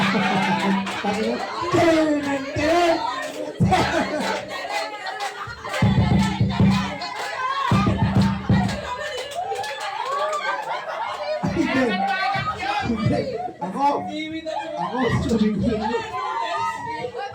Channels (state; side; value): identical; both; correlation 1.00